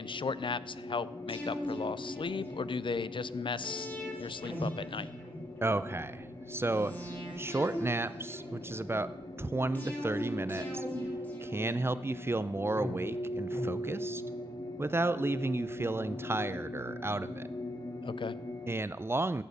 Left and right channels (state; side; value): normal; both; correlation 0.76